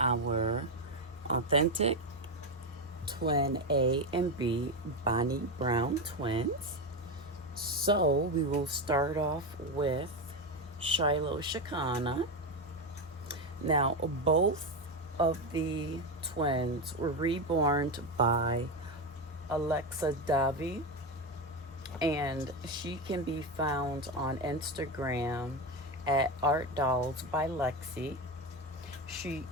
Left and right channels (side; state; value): both; normal; correlation 0.13